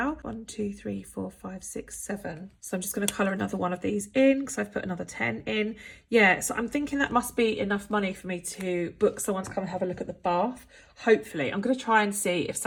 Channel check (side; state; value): both; identical; correlation 1.00